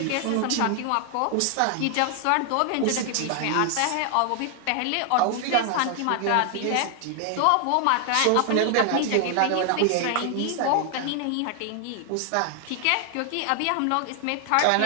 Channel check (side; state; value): both; different; correlation 0.00